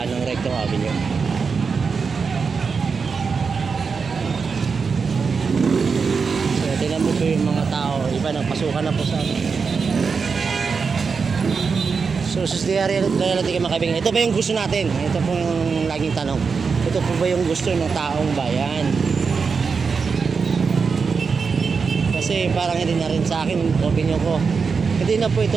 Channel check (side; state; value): left; quieter; 5.3 dB